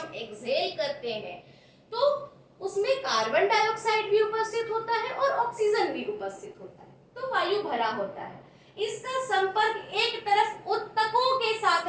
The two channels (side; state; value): both; identical; correlation 1.00